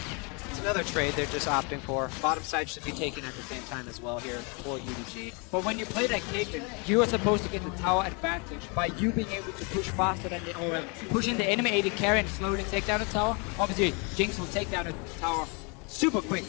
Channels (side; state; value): right; quieter; 32.6 dB